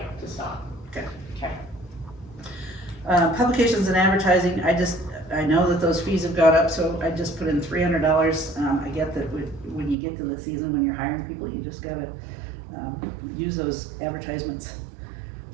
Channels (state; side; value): drops out; left; at 10.0 s